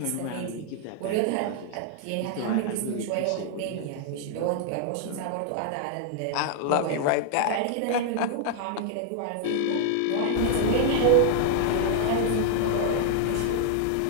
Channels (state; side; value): different; both; correlation 0.00